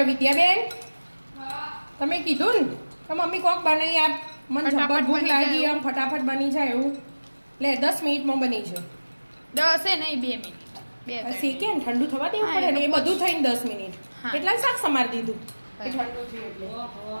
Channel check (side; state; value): both; inverted; correlation -1.00